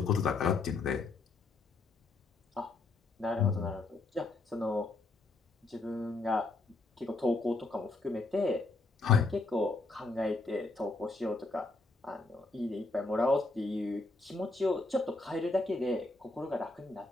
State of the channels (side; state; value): right; quieter; 3.3 dB